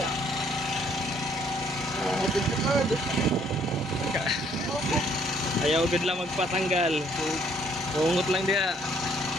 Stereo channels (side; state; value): both; normal; correlation 0.65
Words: ayaw gud lang magpatanggal. Bungot lang dia.